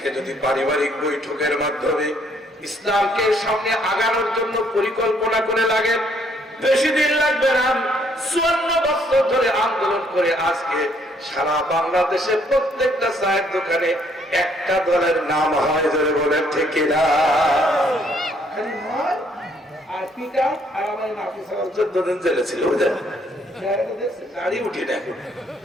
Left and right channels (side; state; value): both; normal; correlation 0.67